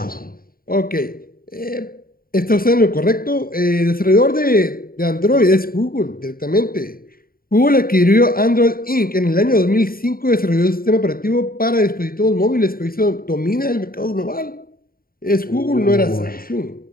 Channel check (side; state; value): right; late; 0.43 ms